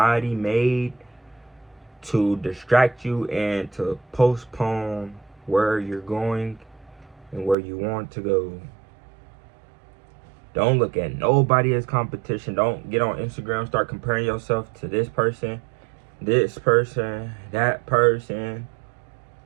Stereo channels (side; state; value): left; drops out; at 7.6 s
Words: made to distract you and to postpone where you're going and where you want to go. Don't look at nobody as competition. Don't get on Instagram, start comparing yourself to this person, that person,